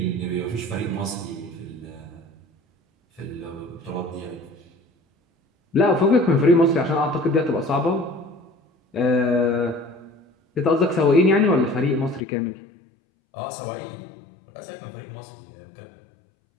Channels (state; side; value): drops out; right; at 12.2 s